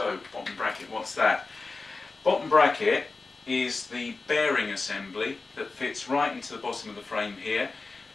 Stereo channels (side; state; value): right; quieter; 3.8 dB